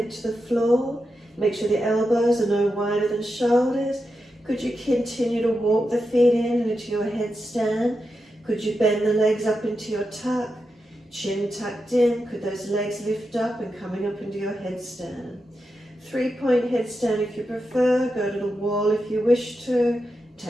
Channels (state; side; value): normal; both; correlation 0.88